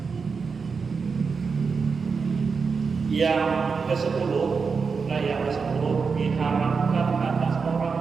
Yang ke-10, yang ke-10 diharamkan atas orang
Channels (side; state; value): left; quieter; 5.2 dB